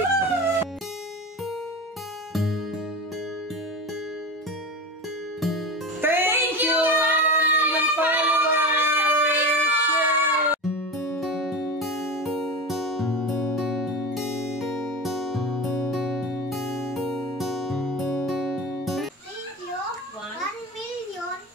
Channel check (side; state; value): both; normal; correlation 0.26